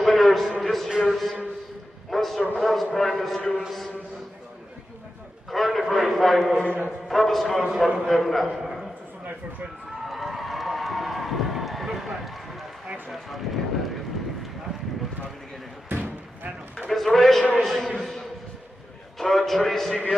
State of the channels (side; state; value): both; normal; correlation 0.90